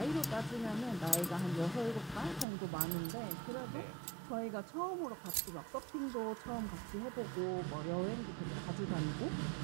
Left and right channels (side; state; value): left; drops out; at 2.5 s